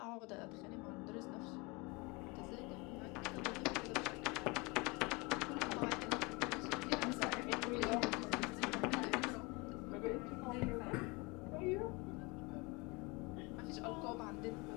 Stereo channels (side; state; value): right; quieter; 27.0 dB